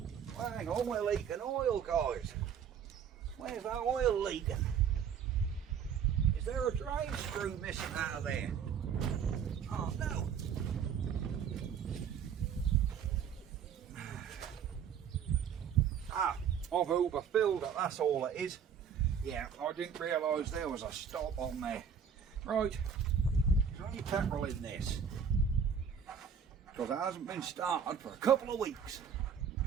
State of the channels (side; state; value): left; quieter; 7.5 dB